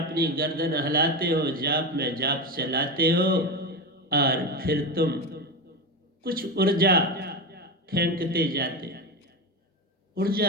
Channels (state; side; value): normal; both; correlation 0.18